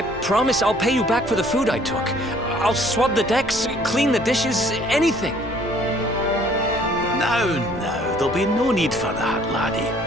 promise I'll pay you back for the food I took. I'll swab the decks, clean the dishes, anything. No, there'll be no need for that, laddie.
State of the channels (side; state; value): both; normal; correlation 0.58